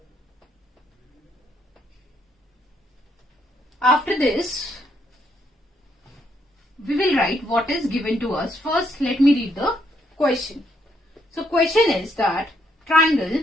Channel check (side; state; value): both; normal; correlation 0.73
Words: After this, we will write what is given to us. First, let me read the question. So, question is that